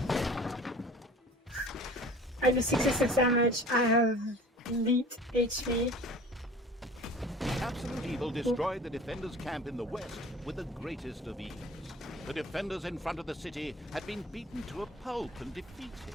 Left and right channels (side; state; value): both; normal; correlation 0.44